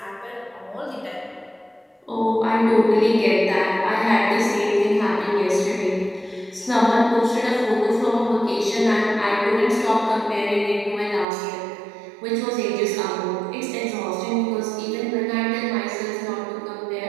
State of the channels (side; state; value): left; drops out; at 11.2 s